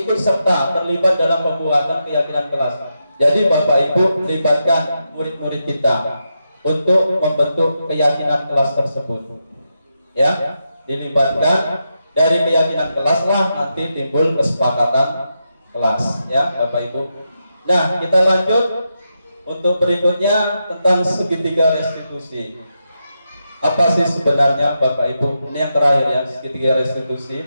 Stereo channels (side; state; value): both; inverted; correlation -0.86